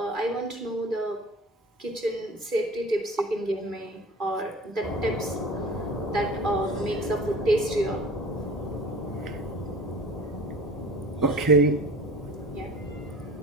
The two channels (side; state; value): both; normal; correlation 0.41